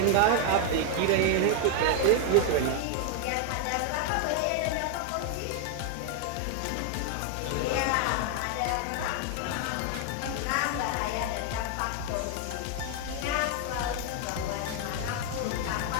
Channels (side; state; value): both; different; correlation 0.00